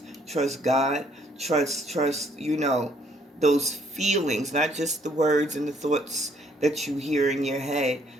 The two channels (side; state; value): both; normal; correlation 0.66